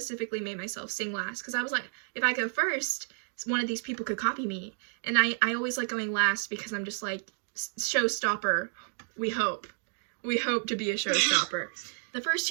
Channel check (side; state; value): left; silent; digital silence